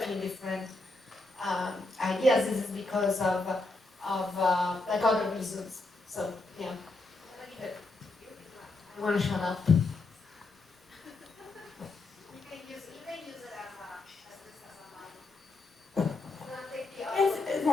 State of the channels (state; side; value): quieter; right; 3.2 dB